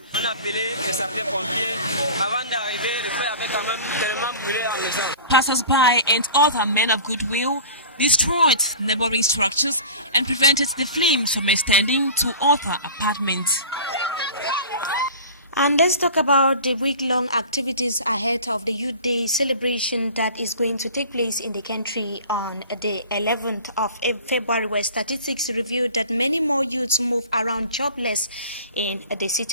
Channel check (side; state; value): both; inverted; correlation -0.39